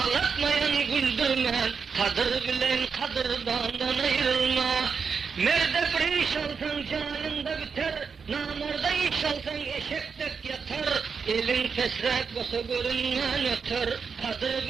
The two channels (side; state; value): left; quieter; 5.7 dB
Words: güldürme, kadır bilen kadırdandan ayrılma. Merde bir iş alsan canında biter, namarda iş alsan eşektek yatar. Elin fesrek basa görünmen öter, kadır